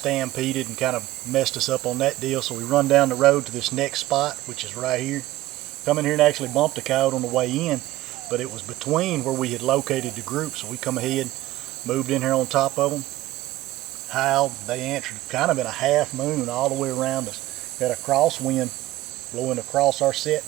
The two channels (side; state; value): left; quieter; 16.4 dB